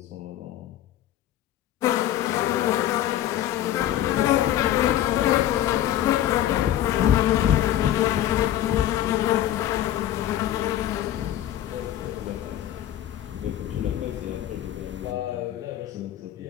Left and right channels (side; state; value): right; quieter; 12.4 dB